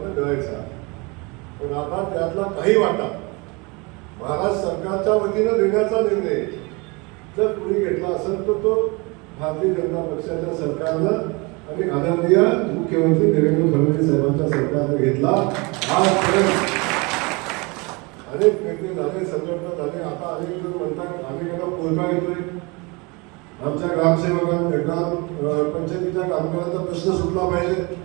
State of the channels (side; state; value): left; quieter; 27.6 dB